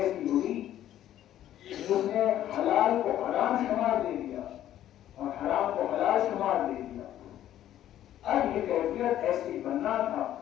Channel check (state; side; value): quieter; right; 12.1 dB